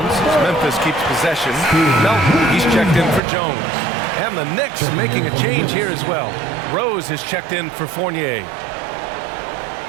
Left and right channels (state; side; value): drops out; left; at 3.2 s